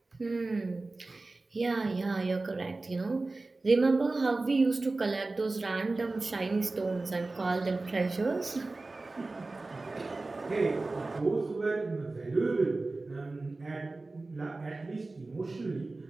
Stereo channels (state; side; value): quieter; left; 3.3 dB